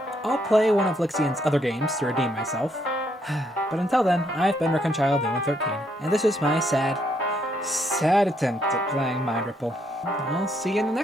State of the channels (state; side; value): normal; both; correlation 0.73